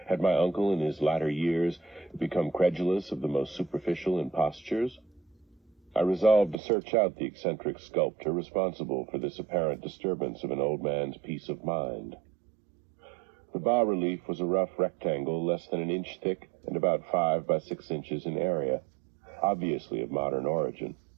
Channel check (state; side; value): drops out; left; at 6.6 s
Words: Had my uncle in his latter years become credulous of the most superficial impostures? I resolved to search out the eccentric sculptor responsible for this apparent disturbance of an old man's peace of mind. The bas-relief was a rough rectangle less than an inch thick and about 5 by 6 inches in area, obviously of modern origin.